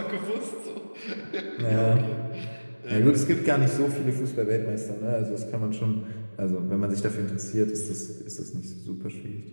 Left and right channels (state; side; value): inverted; both; correlation -1.00